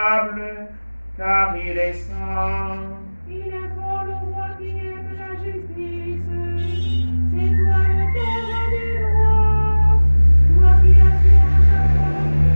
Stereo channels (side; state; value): both; inverted; correlation -1.00